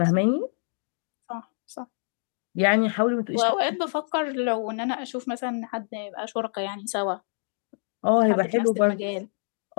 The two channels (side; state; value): right; silent; digital silence